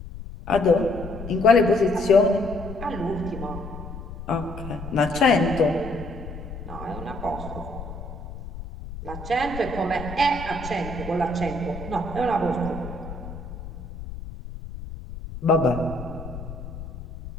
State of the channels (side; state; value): left; noise; rumble, 11 dB below the sound